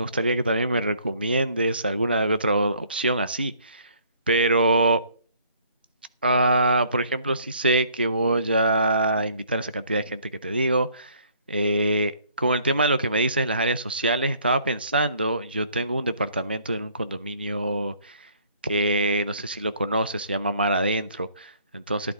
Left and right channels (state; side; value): inverted; both; correlation -0.60